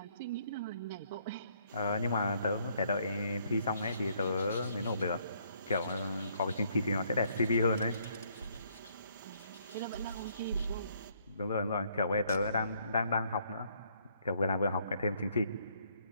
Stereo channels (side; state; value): both; inverted; correlation -0.68